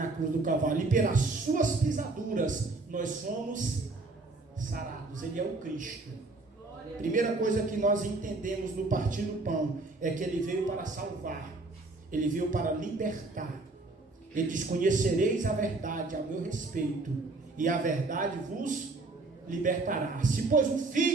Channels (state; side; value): quieter; left; 3.3 dB